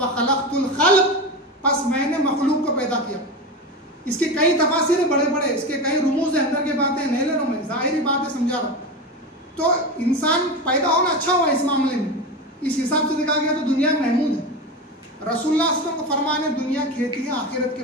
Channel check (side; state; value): both; normal; correlation 0.22